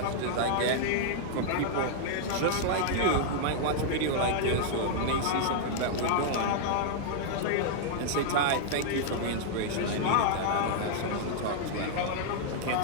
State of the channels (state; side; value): different; both; correlation -0.01